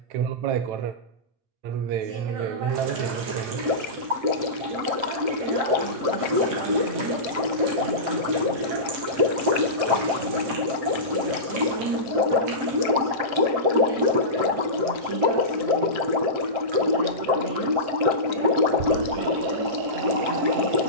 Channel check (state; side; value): late; left; 7.7 ms